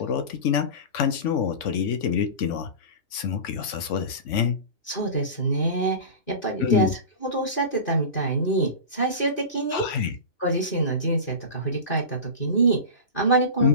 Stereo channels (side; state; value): right; late; 3.5 ms